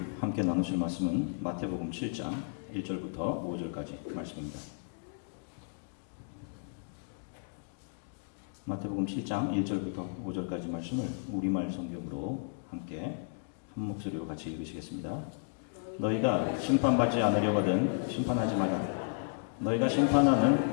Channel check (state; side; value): silent; right; digital silence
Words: 함께 나누실 말씀은 마태복음 7장 1절부터 5절까지 말씀입니다. 마태복음 7장 1절부터 5절까지 말씀을 우리말 성경으로 함께 한 목소리로 같이 읽으시겠습니다. 너희가 심판받지 않으려거든 심판하지 마라. 너희가 심판하는